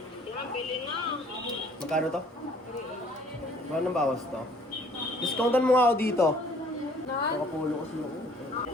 Yan, bili na. Magkano to? Magkano bawas to? Discountan mo nga ako dito. Nakapulo kasi ako.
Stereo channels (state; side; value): normal; both; correlation 0.57